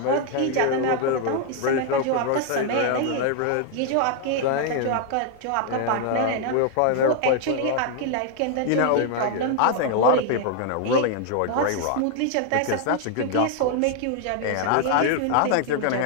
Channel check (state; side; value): different; both; correlation 0.00